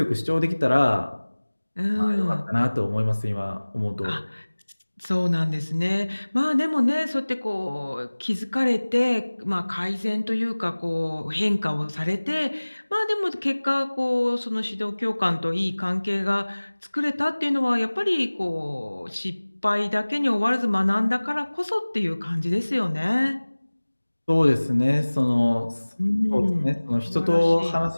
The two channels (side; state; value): both; inverted; correlation -1.00